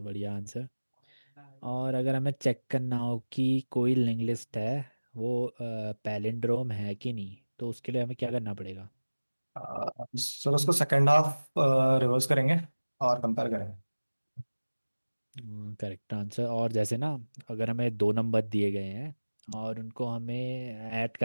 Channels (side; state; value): both; inverted; correlation -1.00